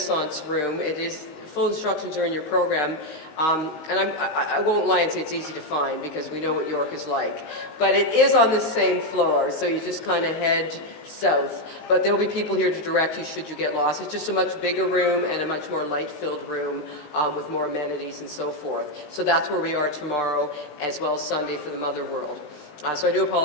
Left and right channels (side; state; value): right; late; 19 ms